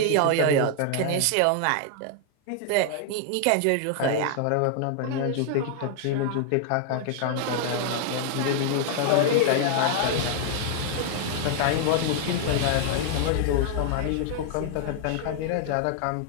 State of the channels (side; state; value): both; different; correlation 0.00